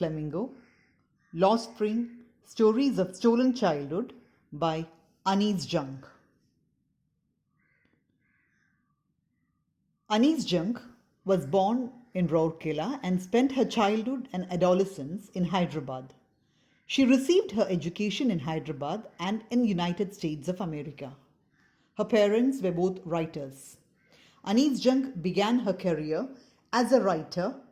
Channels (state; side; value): identical; both; correlation 1.00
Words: Lost Spring Stories of Stolen Childhood by Anis Junk. Anis Junk was born in Rourkela and spent her childhood and adolescence in Hyderabad. She received her education in Hyderabad and in United States of America. Her parents were both writers. Anis Junk began her career as a writer